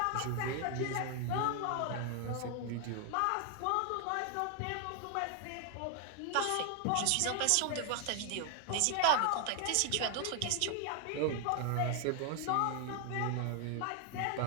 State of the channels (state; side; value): different; both; correlation 0.00